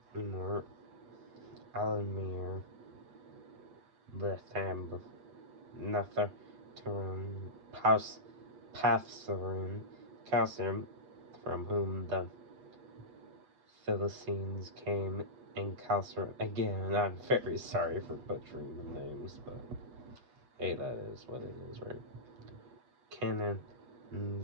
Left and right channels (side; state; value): left; late; 8.0 ms